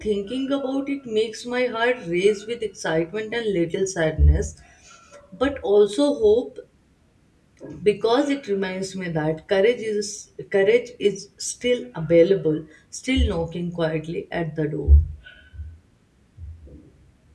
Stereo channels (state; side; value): identical; both; correlation 1.00